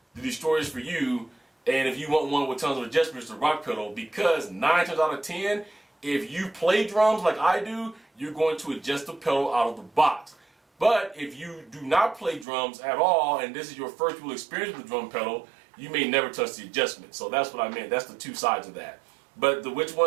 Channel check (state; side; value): drops out; left; at 12.5 s